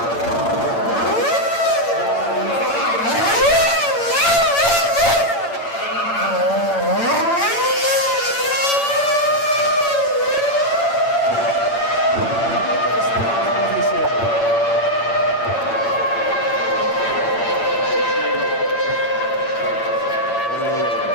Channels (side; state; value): right; late; 8.8 ms